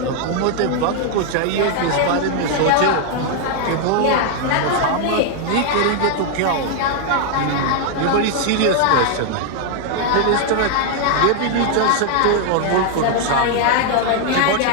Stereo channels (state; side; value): different; both; correlation 0.00